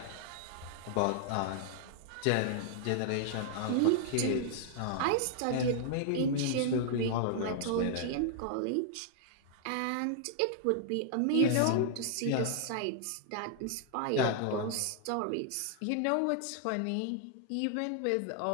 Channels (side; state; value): both; different; correlation -0.01